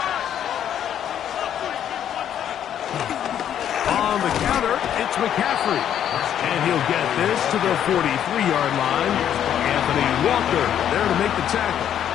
On the counter, it's McCaffrey. And he'll get this to the 43-yard line. Anthony Walker there to make the tackle.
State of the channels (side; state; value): right; quieter; 9.9 dB